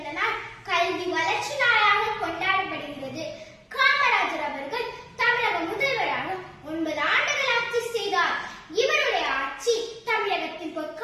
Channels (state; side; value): identical; both; correlation 1.00